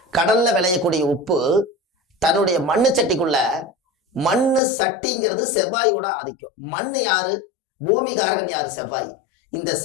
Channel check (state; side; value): drops out; right; at 4.6 s